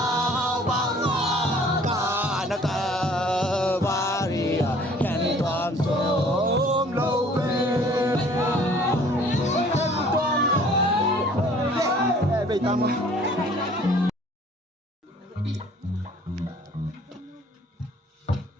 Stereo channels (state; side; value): normal; both; correlation 0.54